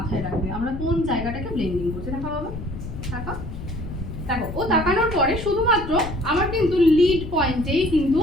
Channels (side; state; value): left; noise; rumble, 9 dB below the sound